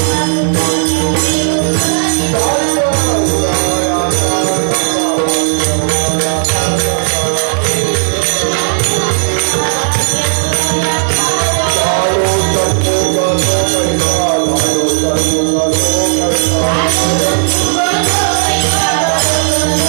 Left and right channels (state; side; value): silent; left; digital silence